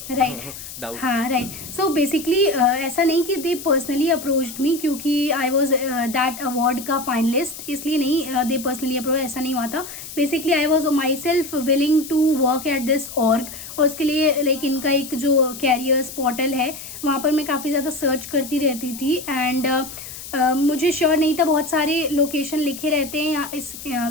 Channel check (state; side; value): noise; left; hiss, 12 dB below the sound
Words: right. doubt. हाँ right. So basically ऐसा नहीं कि they personally approached me क्योंकि I was that award का finalist, इसलिए नहीं they personally approach, ऐसा नहीं हुआ था. Basically I was myself willing to work at this org. और उसके लिए लाइक इनका एक जो कैरियर्स पोर्टल है वहाँ पर मैं काफ़ी ज़्यादा सर्च करती रहती थी. एंड मुझे श्योर नहीं था, बहुत सारे लोकेशन लिखे रहते हैं यहाँ इस